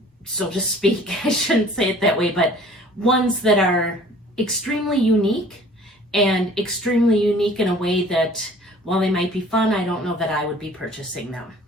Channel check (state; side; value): normal; both; correlation 0.50